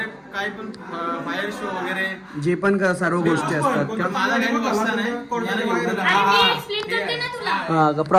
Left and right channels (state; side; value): identical; both; correlation 1.00